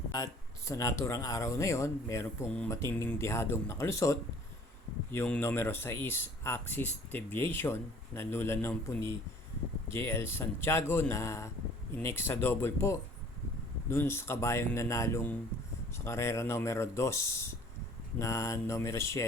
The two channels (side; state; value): both; normal; correlation 0.52